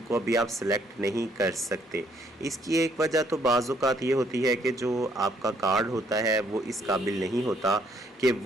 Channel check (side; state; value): both; normal; correlation 0.67